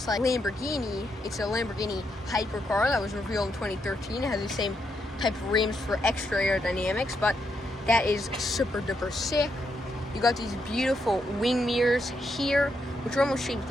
like Lamborghini. It's a Lamborghini hypercar that was revealed in 2013. It has the same type of rims for extra aerodynamics, but that is super duper sick. You got these beautiful wing mirrors here, which are almost shaped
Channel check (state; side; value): normal; both; correlation 0.80